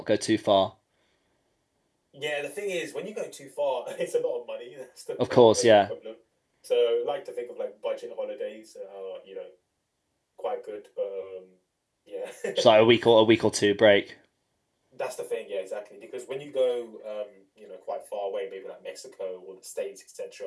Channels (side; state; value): both; identical; correlation 1.00